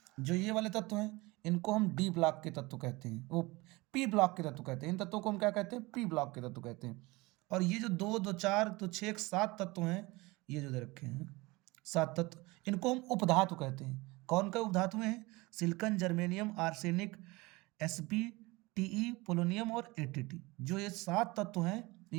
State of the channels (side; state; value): left; quieter; 22.9 dB